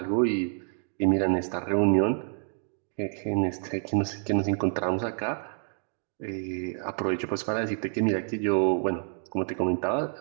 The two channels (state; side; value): silent; left; digital silence